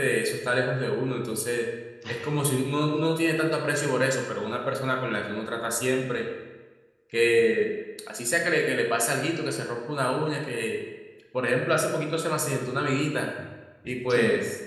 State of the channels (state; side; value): identical; both; correlation 1.00